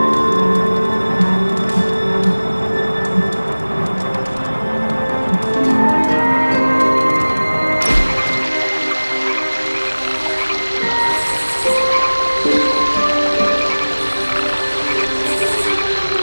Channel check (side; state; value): both; inverted; correlation -1.00